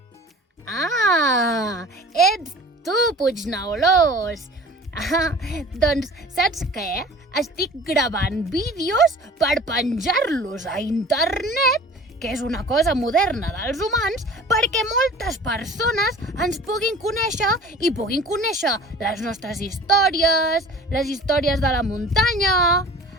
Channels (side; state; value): both; normal; correlation 0.43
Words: Ah, ets tu, Puigneulós! Doncs saps què? Estic gravant vídeos per penjar-los a internet, que és una cosa moderna dels humans, perquè moltes persones ens puguin conèixer i puguin conèixer les nostres històries, les històries de la muntanya.